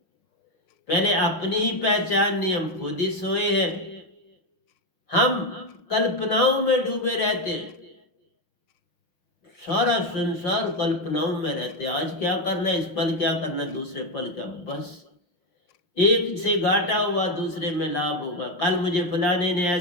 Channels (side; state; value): right; late; 6.1 ms